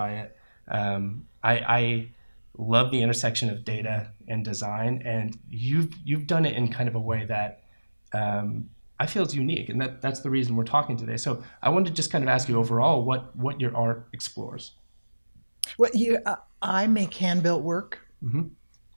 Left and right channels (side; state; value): both; inverted; correlation -1.00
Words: it. I love the intersection of data and design, and you've done it in kind of a way that I feel is unique, and that's the reason we're talking today. So I wanted to just kind of ask you overall what your art explores. Well, I make hand-built work,